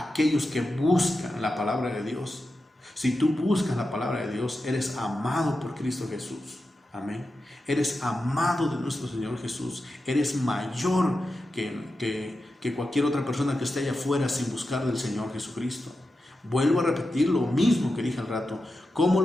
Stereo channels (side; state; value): both; normal; correlation 0.90